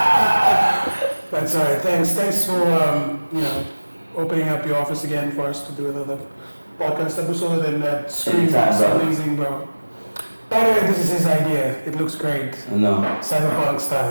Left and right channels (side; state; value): both; inverted; correlation -1.00